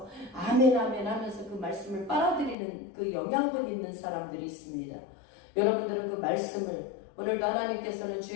아멘 아멘 하면서 그 말씀을 빨아들이는 그 영양분 있는 사람들이 있습니다. 여러분들은 그 말씀을 오늘도 하나님께서는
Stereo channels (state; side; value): drops out; right; at 2.6 s